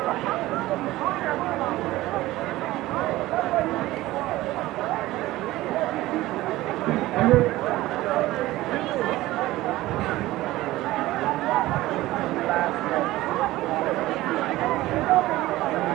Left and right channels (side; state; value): left; quieter; 17.2 dB